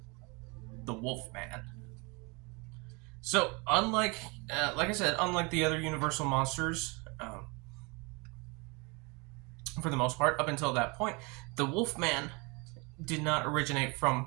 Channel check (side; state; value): left; quieter; 28.8 dB